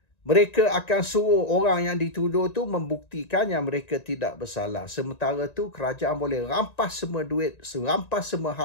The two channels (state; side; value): late; right; 1.9 ms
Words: mereka akan suruh orang yang dituduh tu membuktikan yang mereka tidak bersalah. Sementara tu kerajaan boleh rampas semua duit, rampas semua